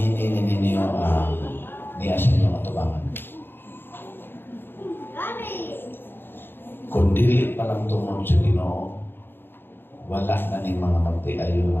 ninyo niya sa inyong atubangan. Kung dili pa lang tungod sa Ginoo, wala na ning mga magtiayo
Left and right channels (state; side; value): late; right; 0.10 ms